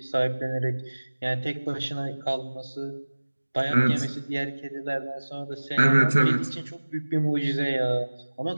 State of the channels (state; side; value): inverted; both; correlation -1.00